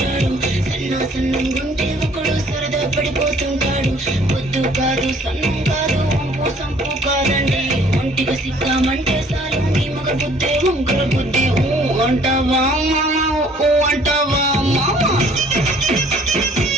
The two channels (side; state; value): both; normal; correlation 0.58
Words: సన్నంగుంటే ఒకడు సరదా పడిపోతుంటాడు. పొద్దు కాదు సన్నం కాదు వంపు సంపు కాదండి, ఒంటిగా సిక్కామంటే చాలు మీ మగ బుద్ధి వంకర బుద్ధి. అంటావా మామా అంటావా మామా,